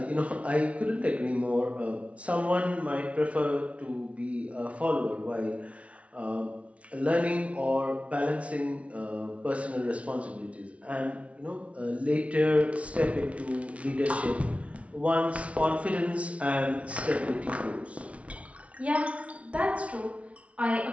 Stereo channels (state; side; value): late; left; 0.063 ms